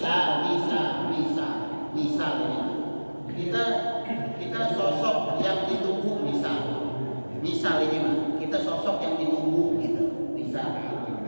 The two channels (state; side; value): inverted; both; correlation -1.00